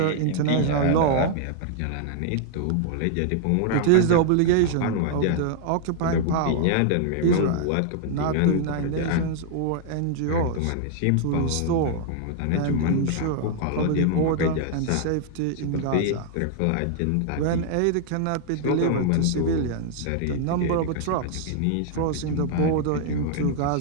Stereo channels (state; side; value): different; both; correlation -0.01